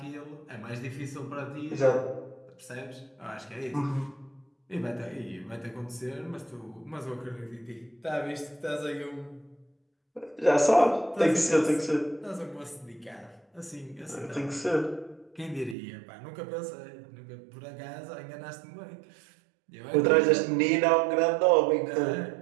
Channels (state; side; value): drops out; left; at 15.8 s